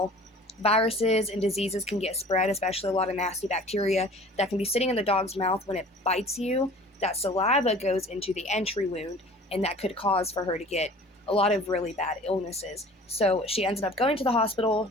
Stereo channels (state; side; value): normal; both; correlation 0.46